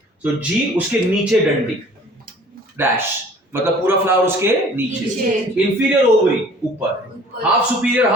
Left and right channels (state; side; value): normal; both; correlation 0.50